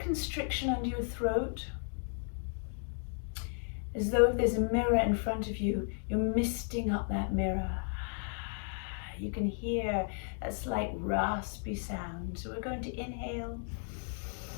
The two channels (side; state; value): right; silent; 55 dB below the other